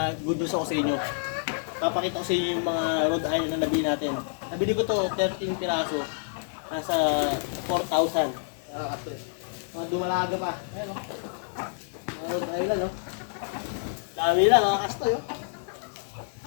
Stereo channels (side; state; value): right; silent; digital silence